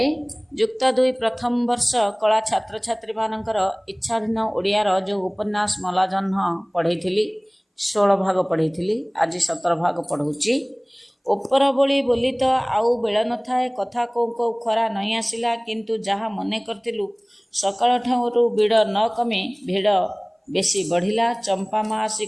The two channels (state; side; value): identical; both; correlation 1.00